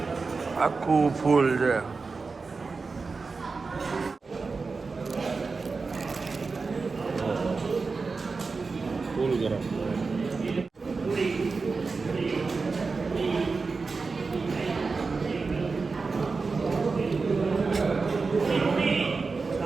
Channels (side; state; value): left; quieter; 4.3 dB